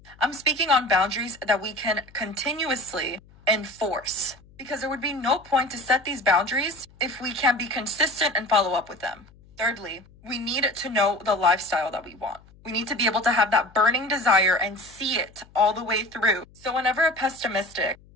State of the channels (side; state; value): left; noise; hum, 26 dB below the sound